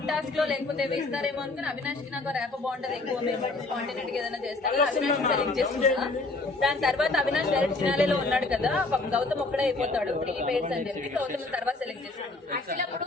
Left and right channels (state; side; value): quieter; right; 3.3 dB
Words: టాస్క్ లో లేకపోతే వేస్తారేమో అనుకుని అవినాష్ కి నాకు ర్యాప్ బాగుంటది, ఎక్కువ మేము స్పాంటేనియస్ గా ఏదైనా చేస్తాడు, అవినాష్ సెలెక్ట్ చేస్తున్నా. దాని తర్వాత అవినాష్ డైరెక్ట్ ఫినాలేలో ఉన్నాడు కదా, గౌతమ్ ఒక్కడే అయిపోతాడు 3 పేర్స్ అని చెప్పి గౌతమ్ తర్వాత సెలెక్ట్ చేస్తాడు. యాక్చువల్లీ అప్పుడు